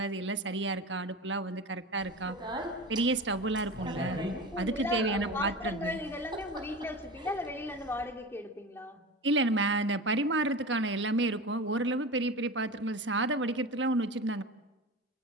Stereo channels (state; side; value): normal; both; correlation 0.29